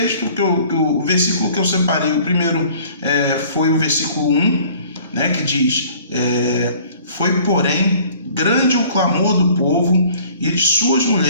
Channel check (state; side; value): inverted; both; correlation -0.52